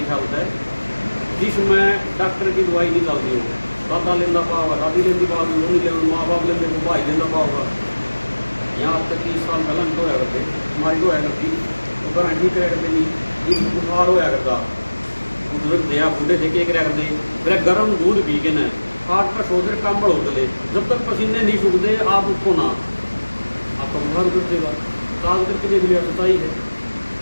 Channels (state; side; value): inverted; both; correlation -1.00